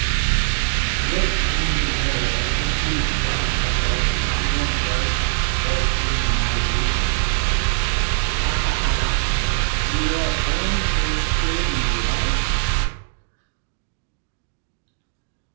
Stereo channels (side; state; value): left; silent; digital silence